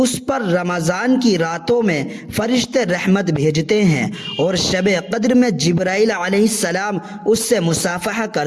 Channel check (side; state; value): both; identical; correlation 1.00